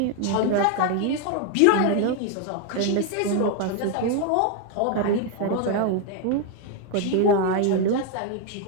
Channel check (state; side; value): different; both; correlation 0.01